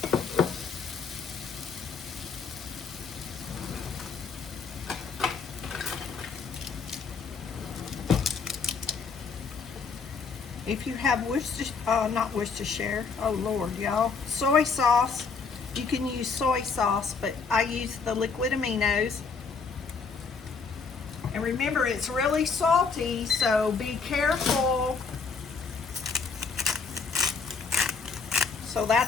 If you have not Worcestershire, oh Lord, y'all, soy sauce, you can use soy sauce, but I use the liquid aminos. And remember, it's really salty, so be careful. So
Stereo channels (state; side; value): quieter; right; 5.1 dB